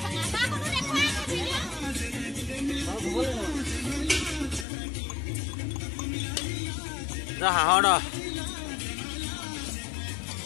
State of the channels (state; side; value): drops out; right; at 4.7 s